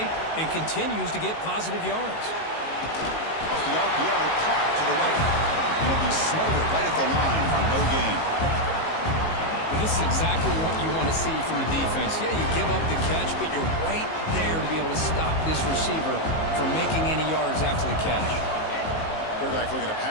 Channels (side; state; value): right; late; 19 ms